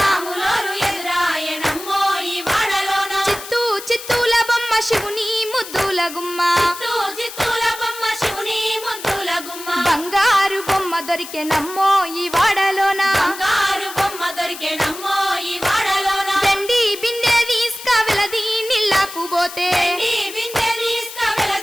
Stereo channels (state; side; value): noise; left; hiss, 12 dB below the sound